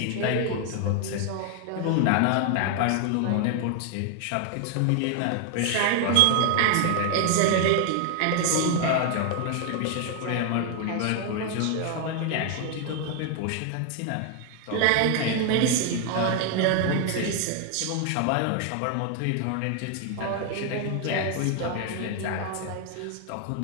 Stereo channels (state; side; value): different; both; correlation 0.00